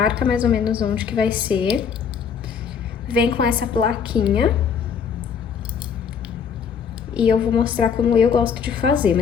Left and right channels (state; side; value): quieter; right; 6.8 dB